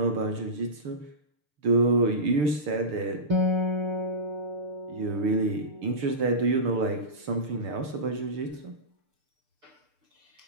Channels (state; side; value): late; left; 6.7 ms